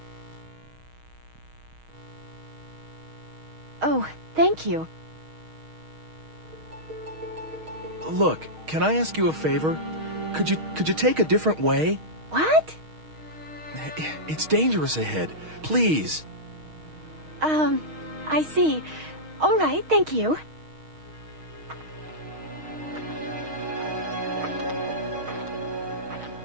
Oh, thank you. Look, can I ask you a favor? Could you take a different way? What? It's dangerous ahead. Please. I see. All right, thank you.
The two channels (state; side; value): late; left; 6.4 ms